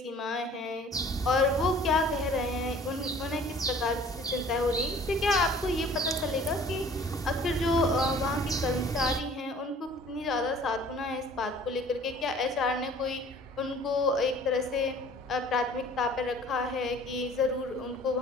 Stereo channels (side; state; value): both; normal; correlation 0.50